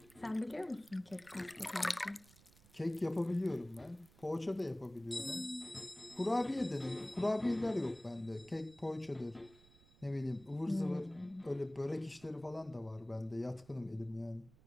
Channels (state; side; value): noise; right; rumble, 25 dB below the sound